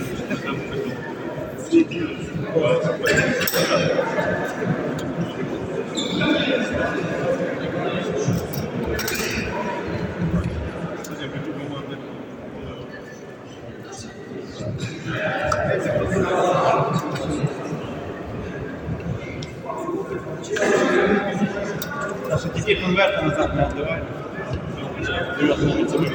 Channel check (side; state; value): both; identical; correlation 1.00